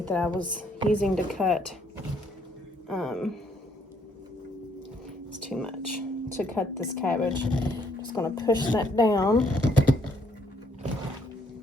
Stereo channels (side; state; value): both; normal; correlation 0.68